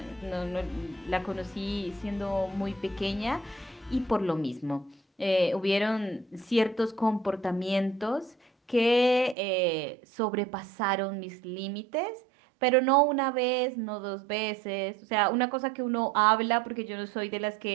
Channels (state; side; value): drops out; left; at 9.3 s